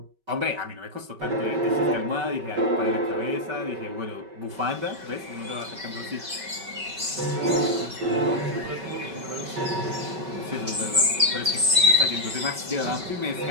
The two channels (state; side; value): late; left; 5.3 ms